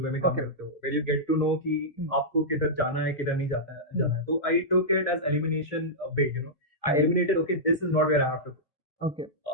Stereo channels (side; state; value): both; normal; correlation -0.12